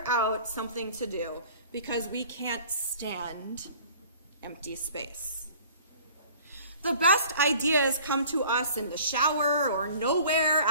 out something to do because we can't stand empty space. The best ideas come to us in the shower or nowhere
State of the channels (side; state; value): both; inverted; correlation -0.49